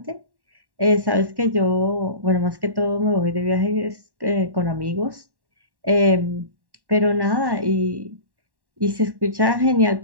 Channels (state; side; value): late; left; 1.1 ms